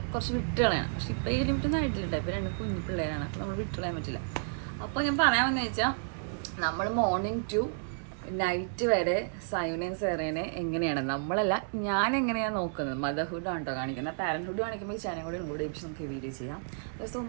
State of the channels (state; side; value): silent; left; digital silence